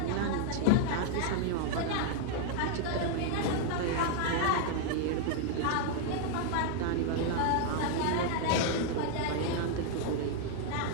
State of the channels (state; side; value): different; both; correlation 0.00